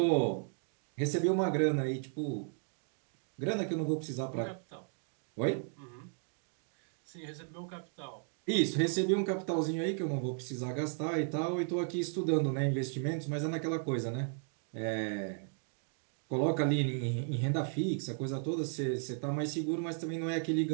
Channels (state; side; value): silent; left; 54 dB below the other